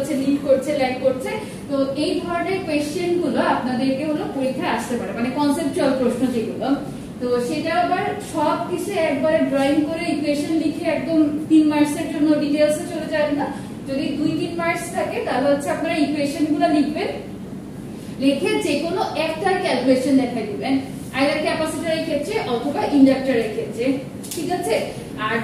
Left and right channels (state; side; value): identical; both; correlation 1.00